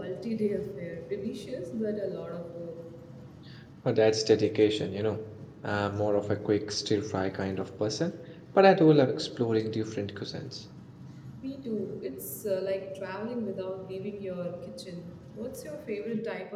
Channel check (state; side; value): identical; both; correlation 1.00